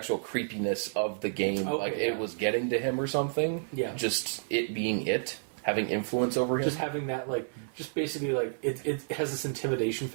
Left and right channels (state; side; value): silent; left; 57 dB below the other